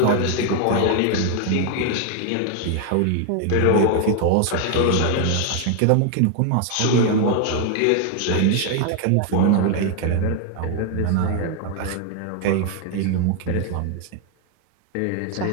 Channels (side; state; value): both; different; correlation 0.01